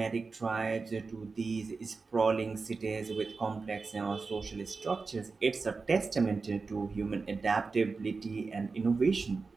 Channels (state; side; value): quieter; left; 4.3 dB